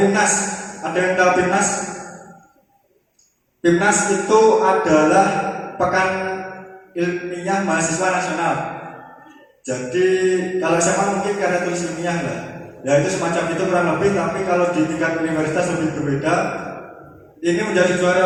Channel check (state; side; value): identical; both; correlation 1.00